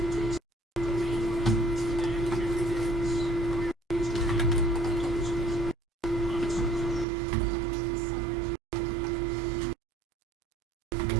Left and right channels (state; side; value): drops out; left; at 7.1 s